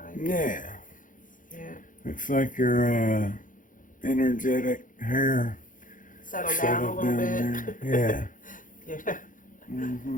Yeah. Yeah. Looks like your energetic hair Settle down a little bit. There. Yeah. Yeah.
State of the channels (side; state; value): right; late; 0.38 ms